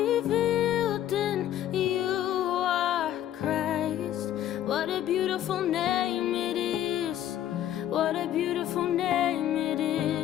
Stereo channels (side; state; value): right; quieter; 11.8 dB